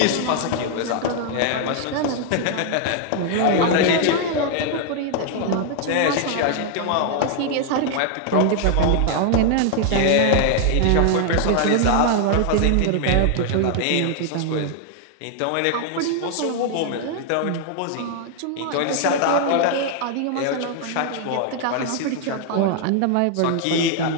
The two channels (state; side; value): different; both; correlation 0.00